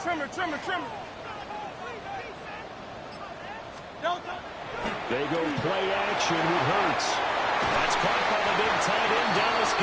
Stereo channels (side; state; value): both; identical; correlation 1.00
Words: Trimmer. They go play action with Hurts. That's caught by the big tight end, Dallas